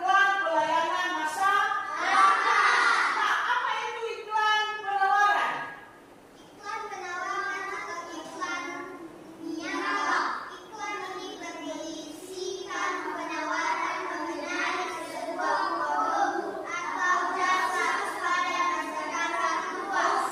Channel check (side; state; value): both; identical; correlation 1.00